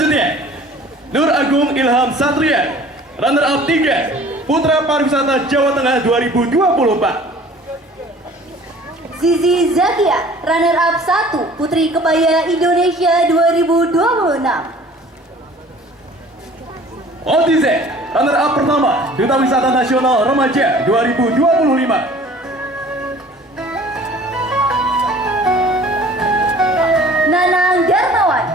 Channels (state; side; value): normal; both; correlation 0.49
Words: Nur Agung Ilham Satria, runner up 3, Putra Pariwisata Jawa Tengah 2024. Zizi Zakia, runner up 1, Putri Kebaya Indonesia 2026. Otize, runner up pertama, Duta Wisata Nasional Remaja 2025. Nanang Darmawan,